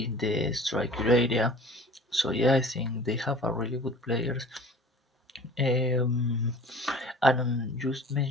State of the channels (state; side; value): normal; both; correlation 0.44